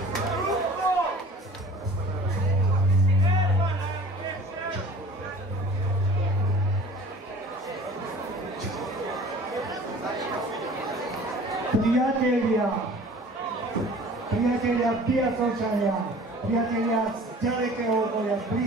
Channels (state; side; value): normal; both; correlation 0.46